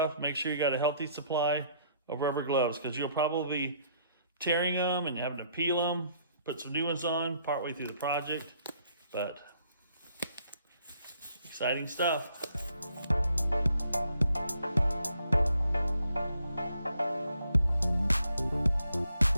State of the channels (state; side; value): inverted; both; correlation -0.67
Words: make sure you got a healthy supply of rubber gloves, because you'll probably be tearing them and having to peel them, put some new ones on partway through the project. But exciting stuff.